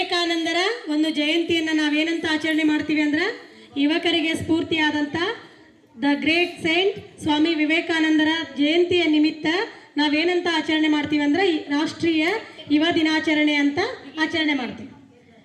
ಒಂದು ಜಯಂತಿಯನ್ನು ನಾವೇನಂತ ಆಚರಣೆ ಮಾಡ್ತೀವಿ ಅಂದ್ರೆ, ಯುವಕರಿಗೆ ಸ್ಫೂರ್ತಿಯಾದಂಥ ದ ಗ್ರೇಟ್ ಸೈಂಟ್ ಸ್ವಾಮಿ ವಿವೇಕಾನಂದರ ಜಯಂತಿಯ ನಿಮಿತ್ತ ನಾವೇನಂತ ಆಚರಣೆ ಮಾಡ್ತೀವಿ ಅಂದ್ರೆ ರಾಷ್ಟ್ರೀಯ ಯುವ ದಿನಾಚರಣೆ ಅಂತ ಆಚರಣೆ ಮಾಡ್ತೀವಿ.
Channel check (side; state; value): both; identical; correlation 1.00